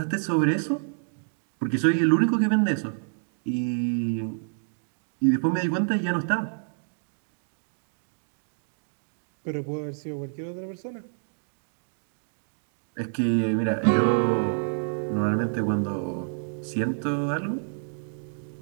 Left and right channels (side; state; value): left; silent; digital silence